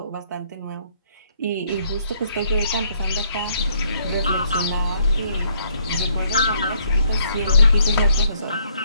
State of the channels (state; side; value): inverted; both; correlation -0.68